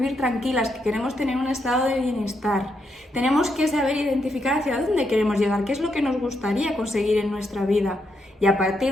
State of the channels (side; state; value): both; normal; correlation 0.80